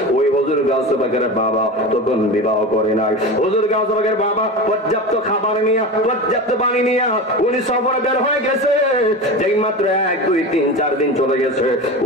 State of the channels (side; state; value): both; normal; correlation 0.27